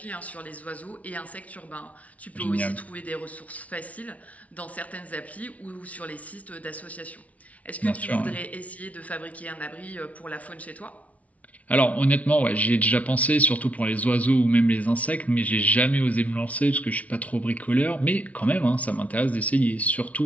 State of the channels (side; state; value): right; late; 0.068 ms